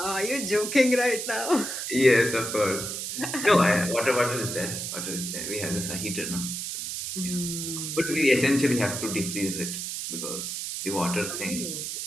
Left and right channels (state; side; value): noise; right; hiss, 5 dB below the sound